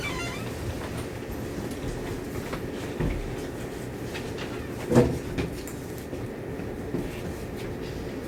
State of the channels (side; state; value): both; identical; correlation 1.00